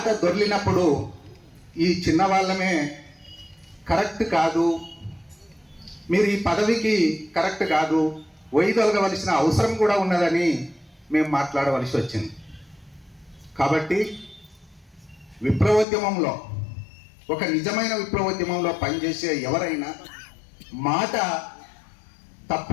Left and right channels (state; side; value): drops out; right; at 15.9 s